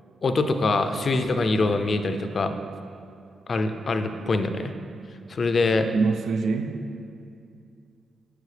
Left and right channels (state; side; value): normal; both; correlation 0.85